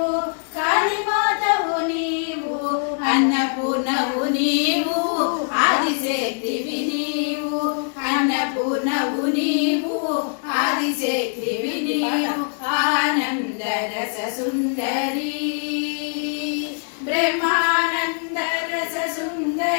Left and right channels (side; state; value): right; silent; 64 dB below the other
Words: కాళీమాతవు నీవు, అన్నపూర్ణవు నీవు, ఆదిశక్తివి నీవు, అన్నపూర్ణవు నీవు, ఆదిశక్తివి నీవు, ఆనంద రస సుందరి, బ్రహ్మానంద రస